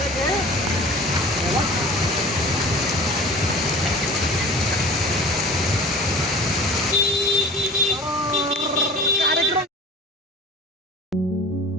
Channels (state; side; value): normal; both; correlation 0.42